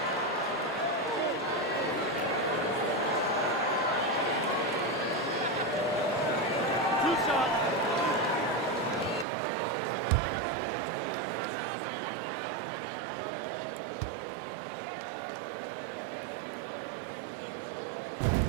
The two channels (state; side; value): drops out; left; at 9.2 s